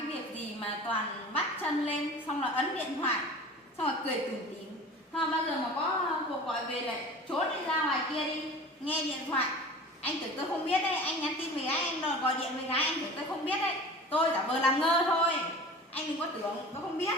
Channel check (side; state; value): both; normal; correlation 0.39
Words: việc gì mà toàn bắt chân lên xong là ấn điện thoại xong rồi cười tủm tỉm. Thôi bao giờ mà có cuộc gọi về lại trốn đi ra ngoài kia đi nghe điện thoại. Anh tưởng tôi không biết đấy, anh nhắn tin với gái, anh gọi điện với gái, anh tưởng tôi không biết đấy. Tôi giả vờ làm ngơ thôi. Anh đừng có tưởng tôi không biết.